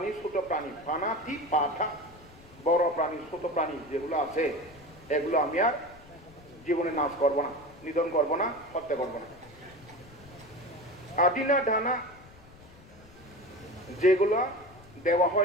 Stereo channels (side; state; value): left; noise; rumble, 22 dB below the sound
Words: ছোট প্রাণী, পানাতি পাথা, বড় প্রাণী ছোট প্রাণী যেগুলো আছে এগুলো আমি আর জীবনে নাশ করবো না, নিধন করবো না, হত্যা করবো না। আদিনা ধানা, যেগুলো দেওয়া